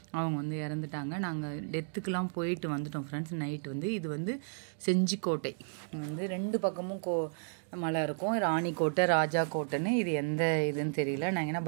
அவங்க வந்து இறந்துட்டாங்க. நாங்கள் டெத்துக்கெலாம் போயிட்டு வந்துட்டோம் ஃப்ரெண்ட்ஸ். நைட்டு வந்து இது வந்து செஞ்சிக்கோட்டை வந்து ரெண்டு பக்கமும் மலை இருக்கும். ராணிக்கோட்டை, ராஜா கோட்டைன்னு. இது எந்த இதுன்னு தெரியல. நாங்கள் ஏன்னா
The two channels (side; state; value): left; silent; digital silence